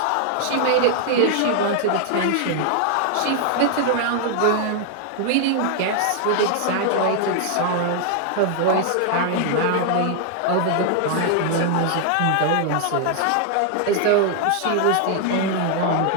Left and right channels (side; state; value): both; different; correlation 0.00